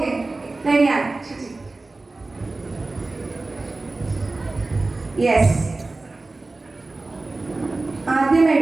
റെഡിയാണ്? യെസ്. ആദ്യം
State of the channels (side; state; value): left; quieter; 3.3 dB